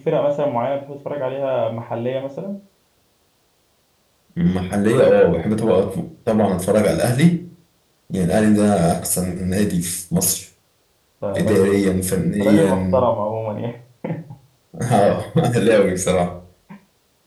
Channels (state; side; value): identical; both; correlation 1.00